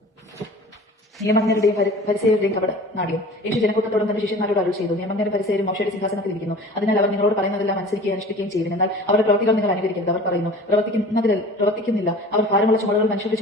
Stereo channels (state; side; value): normal; both; correlation 0.42